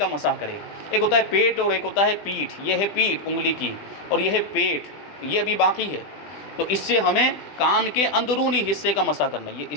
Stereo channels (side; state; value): right; late; 20 ms